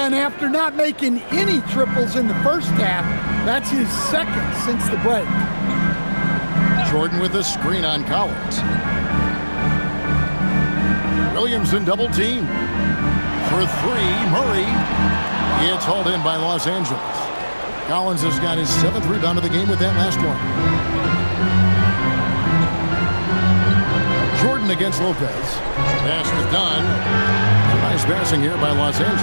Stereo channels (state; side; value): inverted; both; correlation -1.00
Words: and after not making any triples in the first half, that's his second since the break. Jordan with a screen on Collins. Williamson double team. For three, Murray. It's hauled in by Los Angeles. Collins has got his 7th rebound of the game with that last one. Jordan against Lopez. Pass is done. Nice passing here by Los